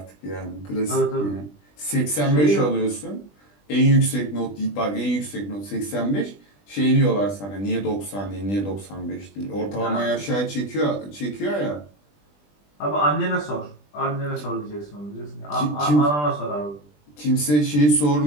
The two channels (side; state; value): right; late; 20 ms